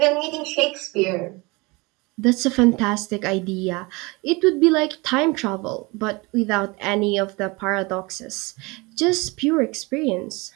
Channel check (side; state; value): left; quieter; 25.6 dB